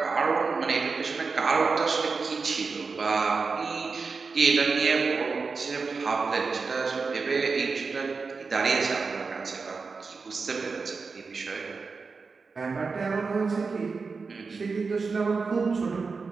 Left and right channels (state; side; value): quieter; left; 4.6 dB